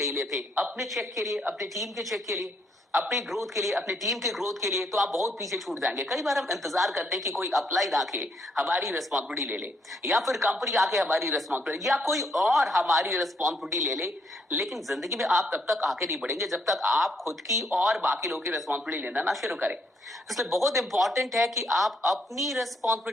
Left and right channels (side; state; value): both; normal; correlation 0.72